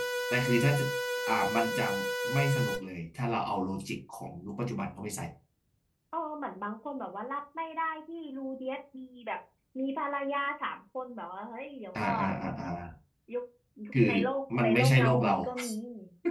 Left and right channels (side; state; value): both; identical; correlation 1.00